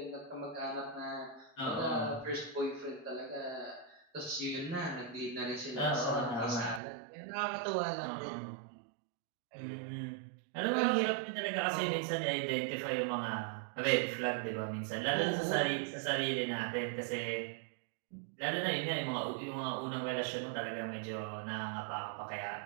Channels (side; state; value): left; drops out; at 6.8 s